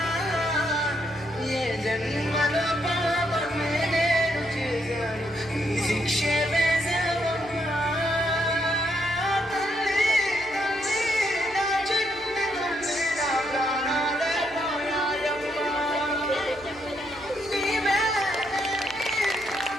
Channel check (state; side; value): noise; left; hum, 22 dB below the sound